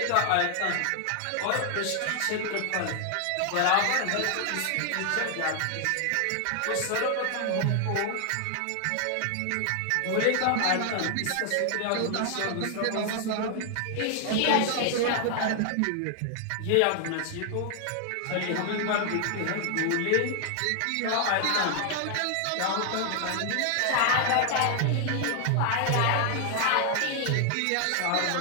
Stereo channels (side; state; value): both; different; correlation 0.00